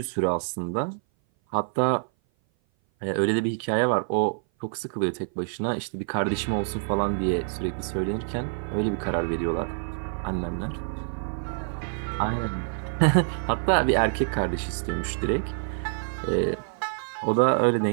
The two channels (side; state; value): left; silent; 57 dB below the other